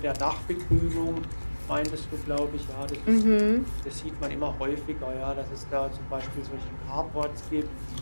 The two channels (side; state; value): both; inverted; correlation -1.00